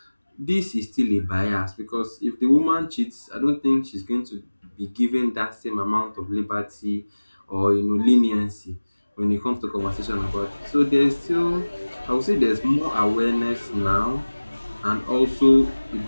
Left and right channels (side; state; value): both; inverted; correlation -1.00